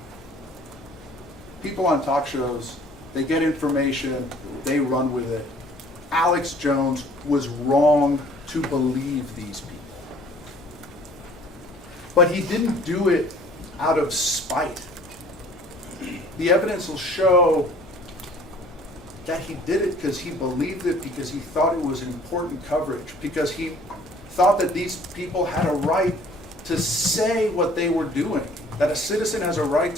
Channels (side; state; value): both; normal; correlation 0.53